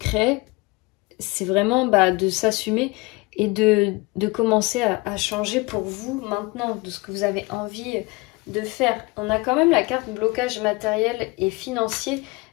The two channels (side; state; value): right; quieter; 25.0 dB